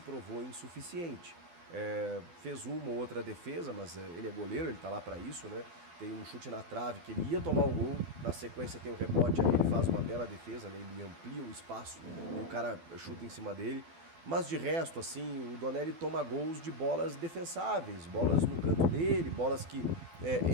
provou insuficiente. Fez uma ou outra defesa, mas ele é goleiro, ele está lá para isso, né? Tem um chute na trave que ele ia tomar o gol, na sequência tem o rebote, aí ele faz uma bela defesa, né? Ele amplia o espaço e o cara chuta em cima dele. Mas de resto, assim, o Donelli toma gols de bolas defensáveis, bolas no canto dele, bolas que...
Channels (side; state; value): left; late; 12 ms